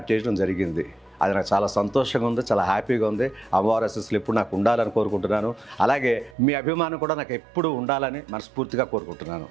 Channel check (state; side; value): drops out; left; at 6.4 s